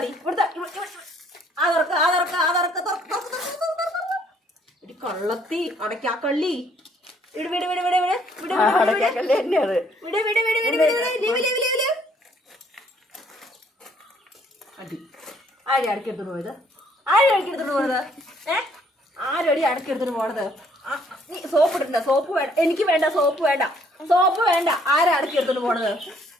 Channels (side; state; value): both; normal; correlation 0.64